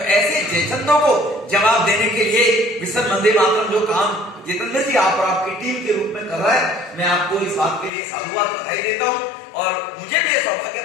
जयचंदों को जवाब देने के लिए मिशन वंदे मातरम जो काम जितेंद्र जी आप और आपकी टीम के रूप में कर रहा है, मैं आपको इस बात के लिए साधुवाद बधाई देता हूं। और मुझे भी सौभाग्य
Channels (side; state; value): right; drops out; at 7.9 s